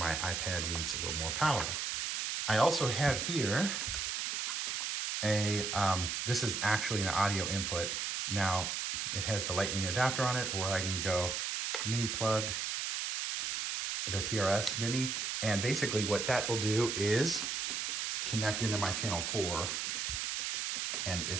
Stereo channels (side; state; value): right; noise; hiss, 1 dB below the sound